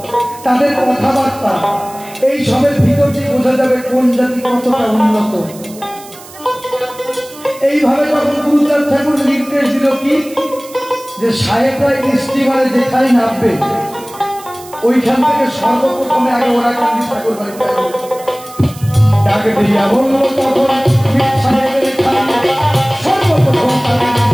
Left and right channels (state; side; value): noise; right; hiss, 19 dB below the sound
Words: তাদের কথাবার্তা, এই সবের ভিতর দিয়ে বোঝা যাবে কোন জাতি কতটা উন্নত। এইভাবে তখন গুরুচাঁদ ঠাকুর নির্দেশ দিল কি, যে সাহেবরা স্টিমারে যেখানে নামবে ওইখান থেকে সর্বপ্রথমে আগে ওরা কান্দি ঠাকুর বাড়িতে ডাকে দিয়া বলল, তখন সাহেবের সর্বপ্রথম